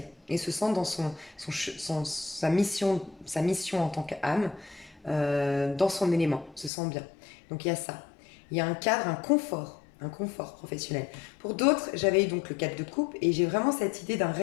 et se sent dans sa mission en tant qu'âme, dans son élément, se sent bien. Donc il y a ça. Il y a un cadre, un confort professionnel. Pour d'autres, j'avais eu donc le cadre de couple et j'ai vraiment cette idée d'un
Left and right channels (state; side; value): drops out; right; at 6.7 s